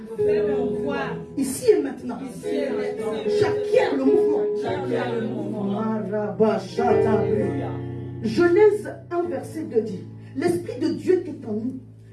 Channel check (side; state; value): both; identical; correlation 1.00